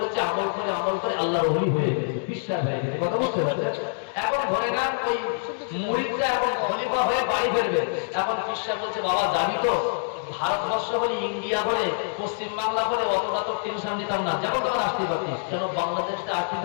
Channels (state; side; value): silent; right; 61 dB below the other